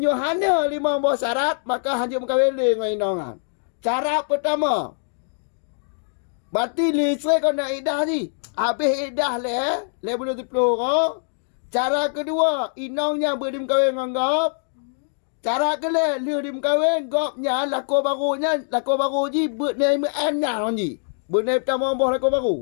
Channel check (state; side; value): silent; right; digital silence